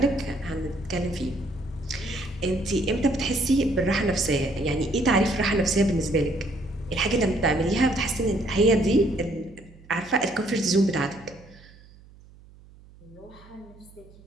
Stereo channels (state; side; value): noise; right; hum, 24 dB below the sound